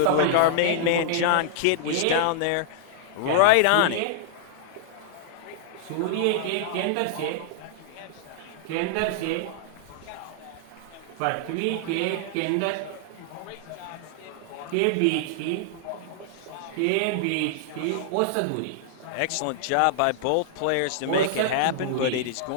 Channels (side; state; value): both; different; correlation -0.01